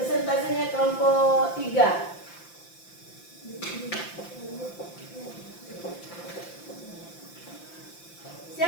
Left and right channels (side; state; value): right; late; 5.8 ms